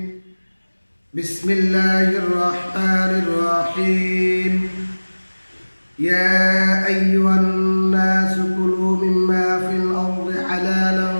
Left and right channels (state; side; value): inverted; both; correlation -1.00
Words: Bismillahirrahmanirrahim. Ya ayyuhan nasu kulu mimma fil ardi